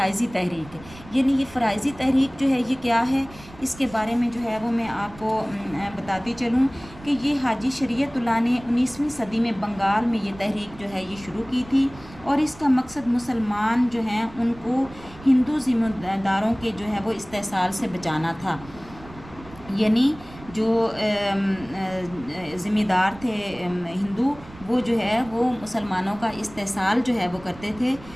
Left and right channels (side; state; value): right; noise; rumble, 19 dB below the sound